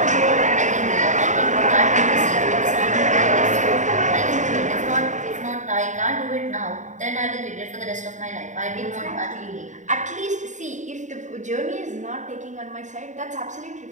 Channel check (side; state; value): left; late; 0.35 ms